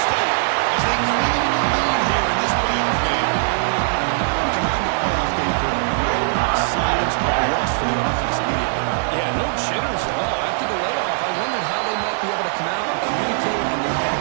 as they clean the lead here in this playoff game. We come out in the playoff game for no signs of rust for the offense immediately. Yeah, no jitters at all. After the layoff, I wondered how they might be able to come out and communicate, and they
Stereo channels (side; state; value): left; silent; 62 dB below the other